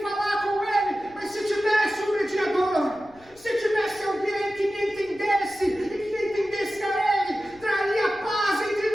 falar com Ele. Mas se tivesse um mediador, se tivesse alguém que me entendesse e que entendesse a Ele, traria paz entre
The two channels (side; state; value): left; noise; rumble, 27 dB below the sound